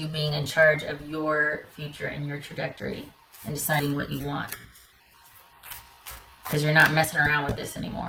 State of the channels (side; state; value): both; identical; correlation 1.00